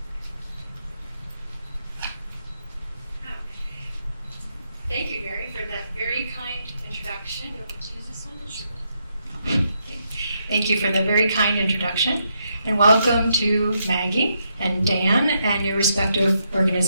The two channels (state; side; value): inverted; both; correlation -0.79